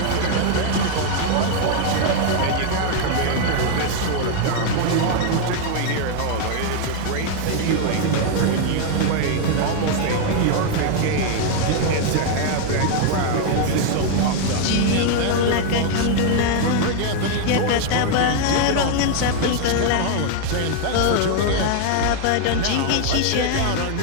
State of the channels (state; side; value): different; both; correlation 0.00